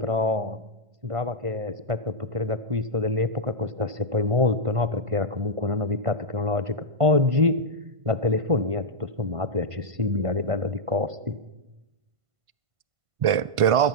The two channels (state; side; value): late; left; 1.5 ms